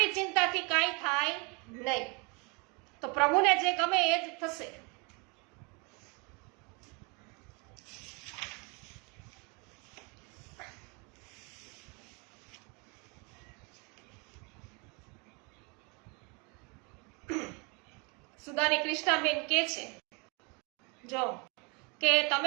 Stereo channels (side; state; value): left; quieter; 31.0 dB